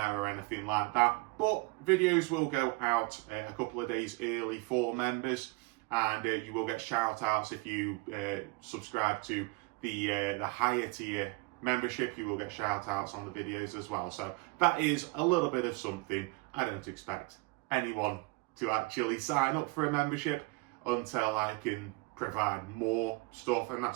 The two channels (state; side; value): quieter; left; 26.1 dB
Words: or anything like that. But videos will go out a couple of days early for members, and you will get shout outs if you subscribe to the higher tier membership. You will get shout outs on the videos as well. So that is a little bit of something. I don't expect anyone to actually sign up for a membership until I can provide more stuff, and